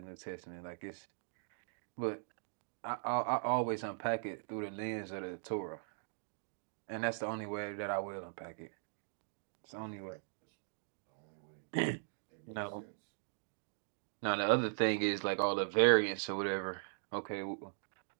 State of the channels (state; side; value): silent; left; digital silence